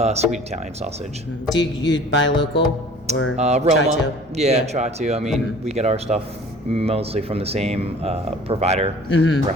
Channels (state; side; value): normal; both; correlation 0.48